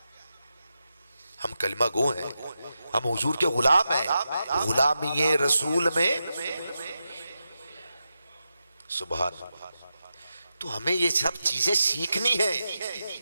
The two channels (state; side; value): inverted; both; correlation -0.89